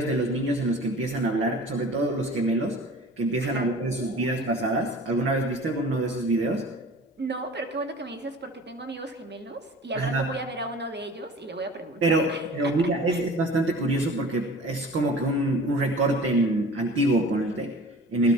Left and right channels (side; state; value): both; normal; correlation 0.42